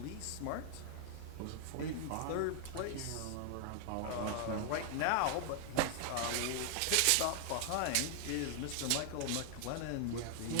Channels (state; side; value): different; both; correlation 0.00